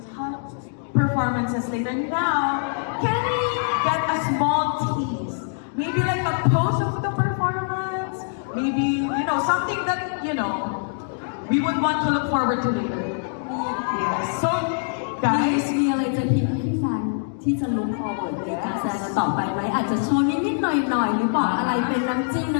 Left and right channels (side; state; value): right; silent; digital silence